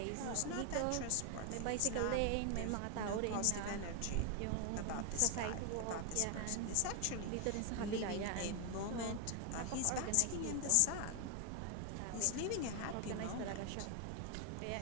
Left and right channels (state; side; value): different; both; correlation 0.00